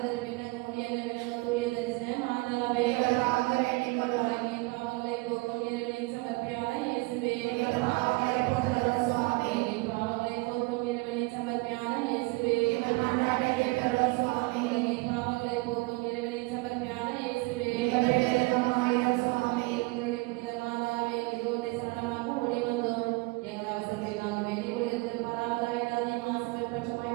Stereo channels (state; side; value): quieter; left; 24.4 dB